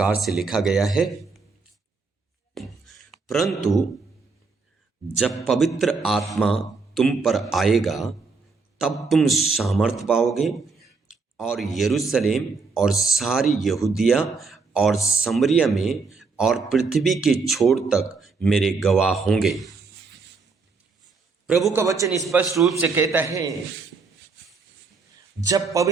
से लिखा गया है, परंतु जब पवित्र आत्मा तुम पर आएगा तब तुम सामर्थ पाओगे और यरूशलेम और सारी यहूदिया और समरिया में और पृथ्वी के छोर तक मेरे गवाह होंगे। प्रभु का वचन स्पष्ट रूप से कहता है, जब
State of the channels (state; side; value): quieter; left; 4.5 dB